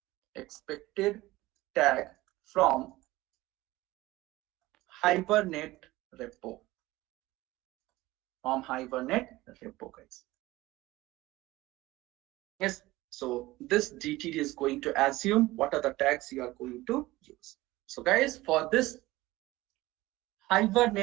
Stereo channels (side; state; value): left; quieter; 18.5 dB